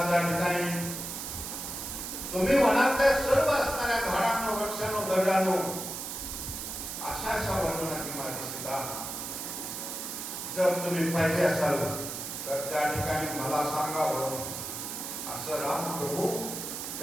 त्या ठिकाणी तुम्ही वनातल्या सर्व असणाऱ्या झाडांनो वृक्षांनो दगडांनो अशा वर्णनाची माझी सीता जर तुम्ही पाहिजे असाल तर त्या ठिकाणी मला सांगावं असं राम प्रभू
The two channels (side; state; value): right; noise; hiss, 6 dB below the sound